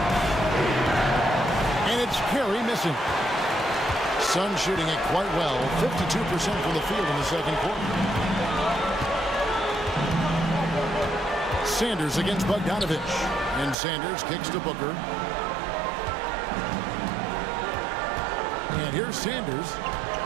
And it's Carey missing. Suns shooting it quite well. 52% from the field in the second quarter. Sanders against Bogdanovich. And Sanders kicks to Booker. And here's Sanders.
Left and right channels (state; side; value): drops out; left; at 13.8 s